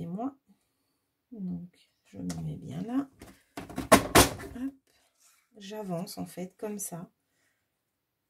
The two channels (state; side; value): identical; both; correlation 1.00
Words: Donc, je me mets bien là. J'avance en fait comme ça.